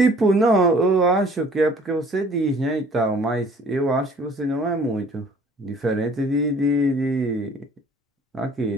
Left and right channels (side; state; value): both; normal; correlation 0.54